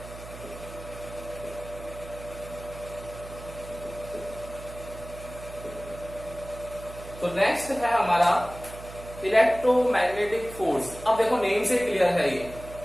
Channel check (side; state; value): right; noise; hum, 14 dB below the sound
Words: तो नेक्स्ट है हमारा इलेक्ट्रोमैग्नेटिक फोर्स। अब देखो नेम से क्लियर है, ये